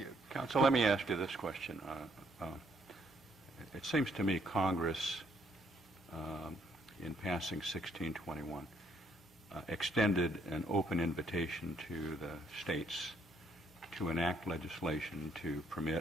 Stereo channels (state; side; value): normal; both; correlation 0.69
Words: Counsel, let me ask you this question. It seems to me Congress, in passing 1621, extended an open invitation to the states to enact legislation to